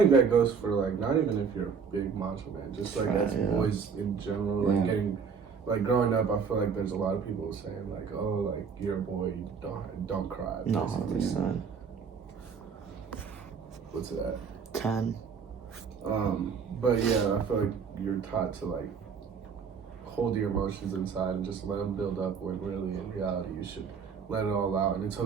that goes for like not even if you're a big macho man, just like as yeah. boys in general, like Yeah. getting like growing up. I feel like there's a lot of people saying like, "Oh, like you're a boy, you don't cry." No, basically. 100%. What's it at? 10. But yeah, I feel like you're taught to like hold your emotions inside and just let them build up. When really, in reality, you should let it all out, and it's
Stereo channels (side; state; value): left; quieter; 6.1 dB